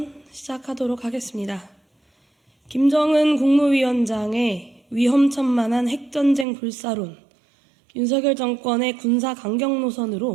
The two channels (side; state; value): left; drops out; at 6.5 s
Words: 시작하도록 하겠습니다. 김정은 국무위원장의 위험천만한 핵전쟁 불사론, 윤석열 정권의 군사 강경